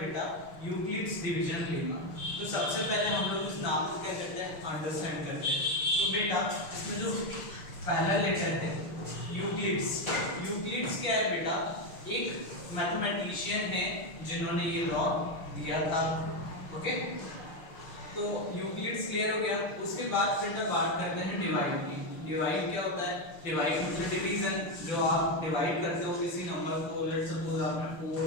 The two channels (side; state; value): right; late; 6.0 ms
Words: यूक्लिड्स डिवीजन लेमा। तो सबसे पहले हम लोग इस नाम को क्या करते हैं अंडरस्टैंड करते हैं। तो बेटा इसमें जो पहला लेटर है यूक्लिड्स, यूक्लिड्स क्या है बेटा, एक मैथमेटिशियन है जिन्होंने ये लॉ दिया था। ओके तो यूक्लिड्स क्लियर हो गया। उसके बाद बेटा बात करते हैं डिवाइड की। डिवाइड क्या होता है? डिवाइड मतलब डिवीजन, जो आप डिवाइड करते हो किसी नंबर को। लेट्स सपोज आपने